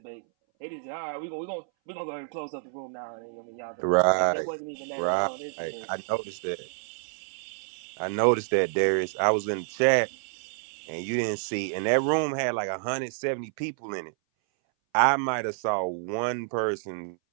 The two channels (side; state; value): left; silent; 59 dB below the other